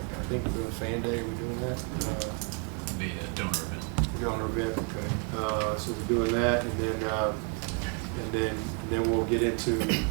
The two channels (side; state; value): left; quieter; 37.1 dB